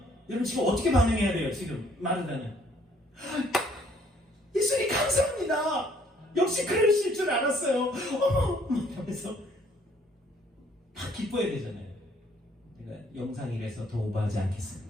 여러분 지금 어떻게 반응해야 돼요? 지금 마르다는 예수님 감사합니다. 역시 그러실 줄 알았어요. 어머 하면서 막 기뻐해야 되잖아요. 제가 영상이라서 더 오버하지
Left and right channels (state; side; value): normal; both; correlation 0.63